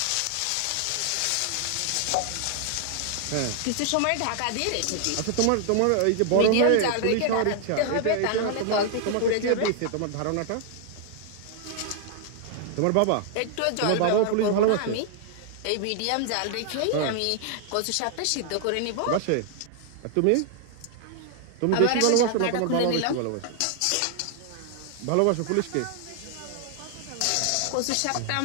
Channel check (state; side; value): different; both; correlation 0.00